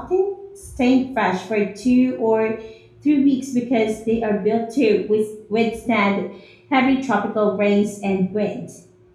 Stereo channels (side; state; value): both; identical; correlation 1.00